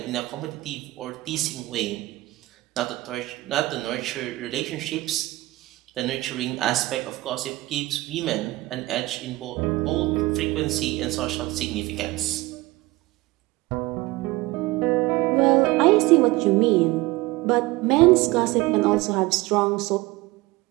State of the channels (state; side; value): quieter; left; 19.9 dB